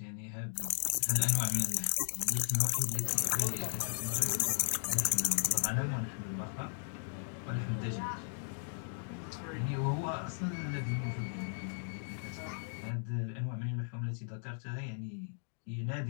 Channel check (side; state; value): right; silent; digital silence